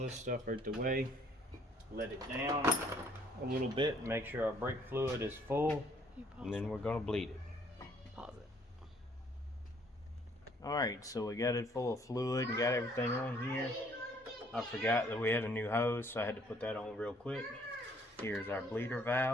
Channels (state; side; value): normal; both; correlation 0.62